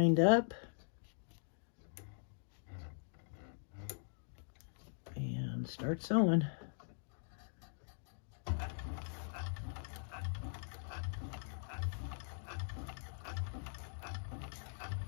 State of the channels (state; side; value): silent; right; digital silence